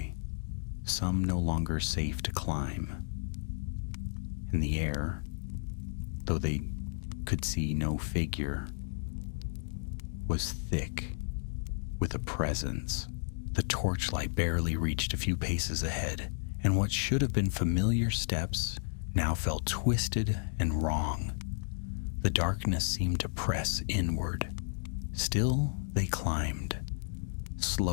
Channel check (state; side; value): silent; right; digital silence